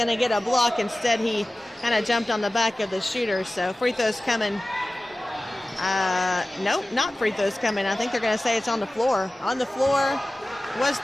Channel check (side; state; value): both; normal; correlation 0.96